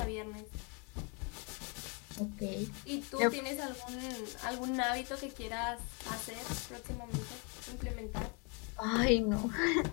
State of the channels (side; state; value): right; quieter; 34.0 dB